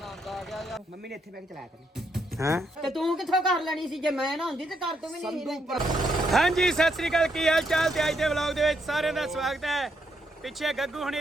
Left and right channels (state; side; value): normal; both; correlation 0.77